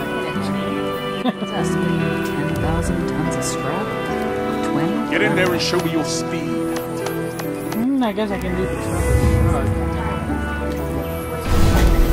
10,000 tons of scrap? 20? Get in there and show me your speed. I guess I can do the truck.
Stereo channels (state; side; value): identical; both; correlation 1.00